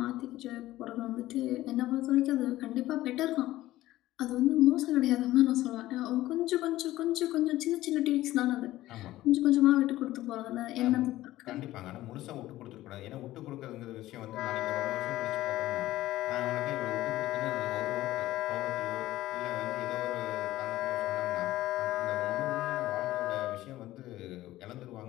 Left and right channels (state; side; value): quieter; right; 15.8 dB